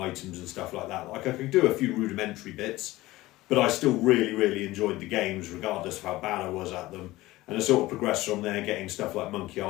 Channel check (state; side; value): quieter; right; 18.1 dB